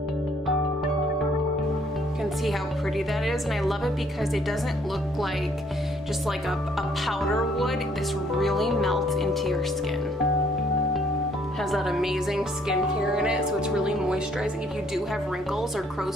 You can see how pretty that is, and I love it because it doesn't look like just like a powder would. This really melts into your skin. Has that amazing skincare in it, so it's really moisturizing. If you do have wrinkles or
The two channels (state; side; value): normal; both; correlation 0.64